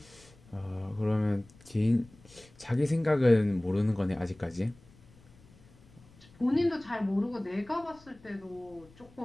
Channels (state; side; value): noise; left; rumble, 25 dB below the sound